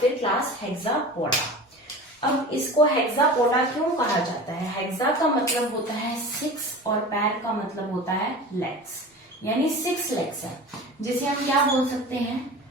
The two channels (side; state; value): both; normal; correlation 0.35